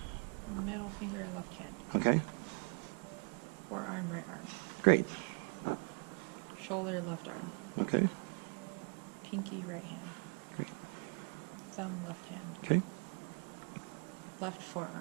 Middle finger, left hand. Okay. Forearm, right arm. Great. Shoulder, left arm. Okay. Pinky, right hand. Great. Thumb, left hand. Okay. Left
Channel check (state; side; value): quieter; left; 36.1 dB